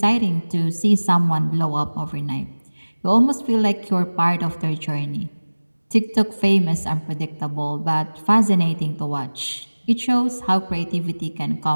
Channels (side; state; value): both; inverted; correlation -1.00